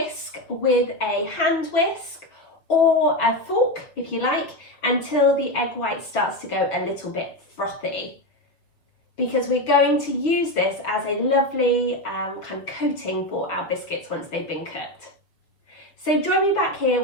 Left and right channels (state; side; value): late; right; 6.2 ms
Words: with a hand whisk or a fork, if you like, until the egg white starts to go a little bit frothy. Because we're going to use this as a lovely kind of coating for our biscuits once they've been cooked. So join me back here